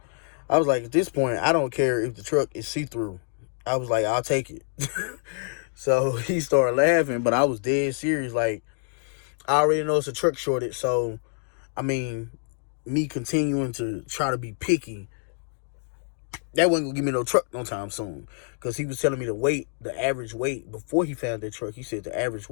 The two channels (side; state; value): right; silent; 61 dB below the other